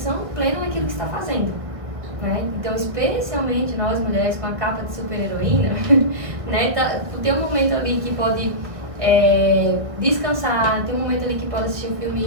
plena naquilo que está fazendo, né? Então, especialmente nós mulheres com a capa de super-heroína, né? Tem um momento ali que pode descansar, tem um momento ali que pode assistir um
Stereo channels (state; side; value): late; left; 1.6 ms